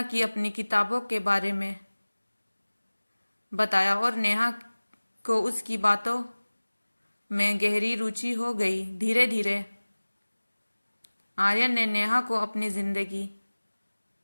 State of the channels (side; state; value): both; inverted; correlation -1.00